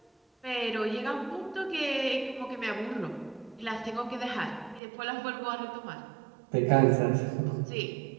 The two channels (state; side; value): drops out; left; at 4.8 s